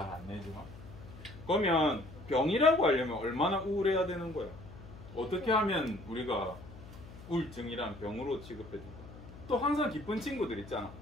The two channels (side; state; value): left; noise; hum, 16 dB below the sound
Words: 안 내지만. 그러면 병이라고 하려면 얼마나 우울해야 되는 거야? 어떻게 하면 우리가 우울증이란 병으로 취급해줄까? 또 항상 기쁜 친구들 있잖아.